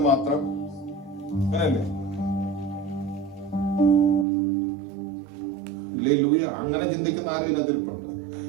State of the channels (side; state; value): left; drops out; at 4.2 s